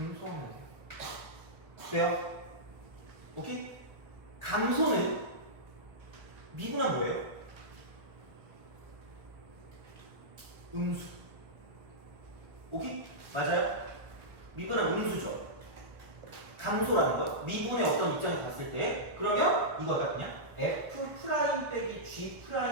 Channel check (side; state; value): left; late; 1.0 ms